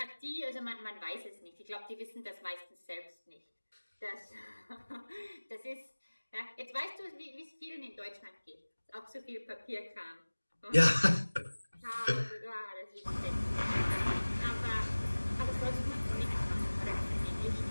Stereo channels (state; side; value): inverted; both; correlation -1.00